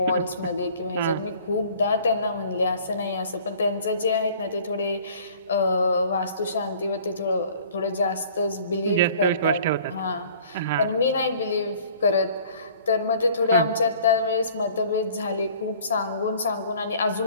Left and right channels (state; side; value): inverted; both; correlation -0.51